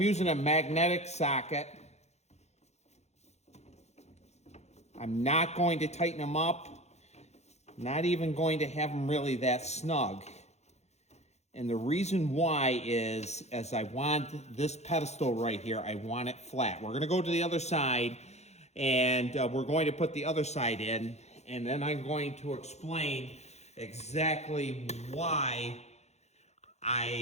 a magnetic socket. I'm not going to tighten them up. Not even going to have them really that snug. And the reason why is, as I want this pedestal right here, I want it flat. We're gonna go to the other side, and we're going to put the other side in, and then I'm going to explain exactly why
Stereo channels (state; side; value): late; right; 0.32 ms